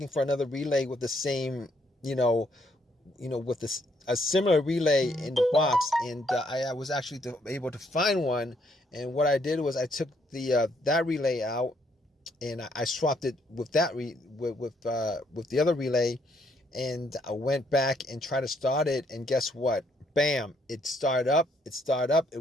for another relay with the same, with this a similar relay in the box, and I was actually able to find one. And what I did was I took the that relay out, and I swapped it with that with the other relay, and I went back and tried to start it, and guess what? Bam! It started up. It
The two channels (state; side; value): normal; both; correlation 0.71